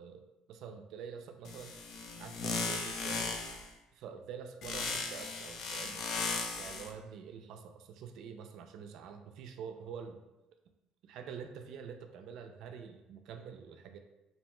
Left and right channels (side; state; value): both; normal; correlation 0.50